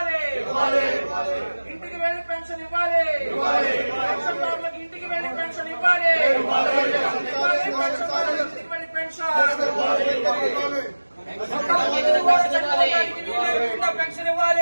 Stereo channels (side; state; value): both; inverted; correlation -1.00